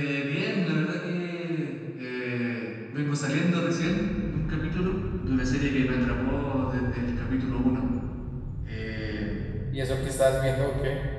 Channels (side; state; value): both; identical; correlation 1.00